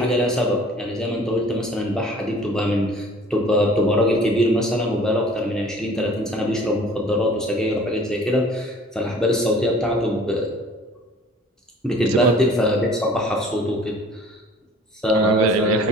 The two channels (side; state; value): both; normal; correlation 0.50